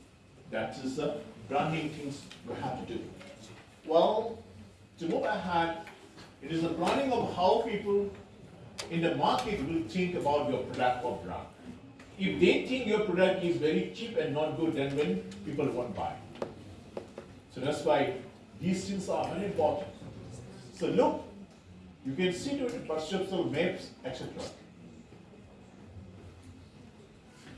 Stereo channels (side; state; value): both; identical; correlation 1.00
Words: That is the branding things we have to do. Well, to move ahead, it is the planning of how people in the market will think about your product or brand. If they think your product is very cheap and not good, then when people won't buy. So that's why these things are very important. So look, you can see to it perceptual maps, etc.